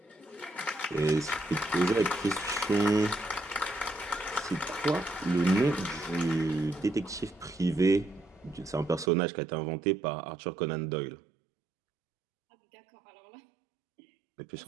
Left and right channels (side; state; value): left; drops out; at 9.1 s